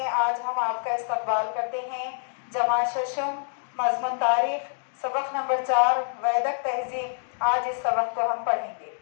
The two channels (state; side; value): silent; right; digital silence